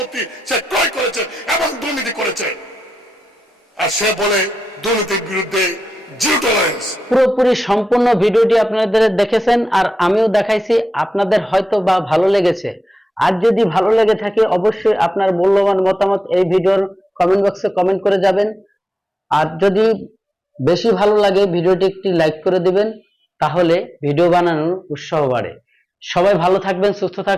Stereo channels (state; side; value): normal; both; correlation 0.91